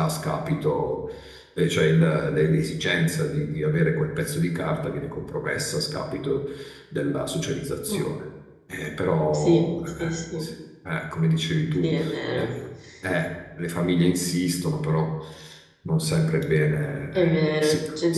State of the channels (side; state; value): both; identical; correlation 1.00